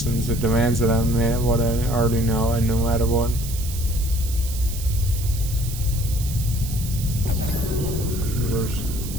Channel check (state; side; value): noise; right; hiss, 11 dB below the sound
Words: It demands that I admit what I already know, and no matter what.